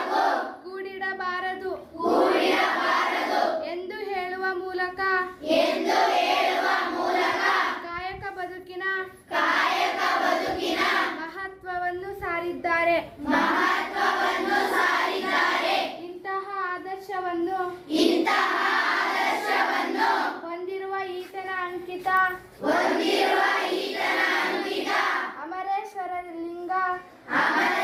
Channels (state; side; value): identical; both; correlation 1.00